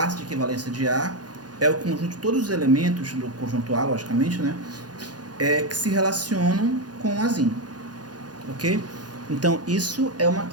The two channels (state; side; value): late; left; 0.69 ms